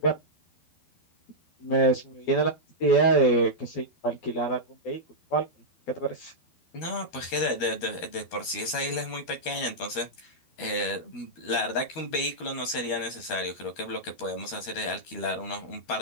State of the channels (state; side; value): late; right; 12 ms